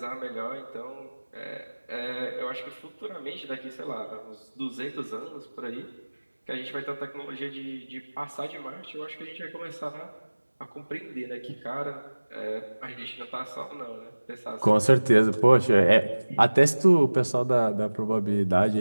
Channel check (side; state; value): both; inverted; correlation -1.00